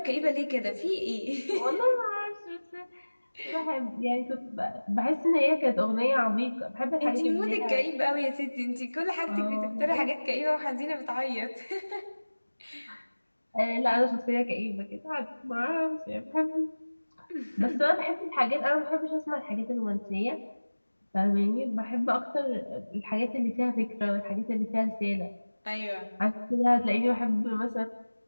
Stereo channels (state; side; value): inverted; both; correlation -1.00